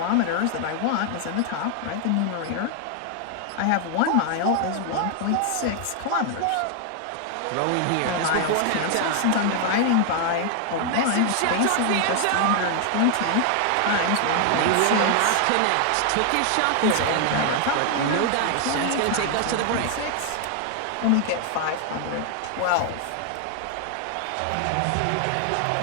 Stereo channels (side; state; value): both; different; correlation 0.00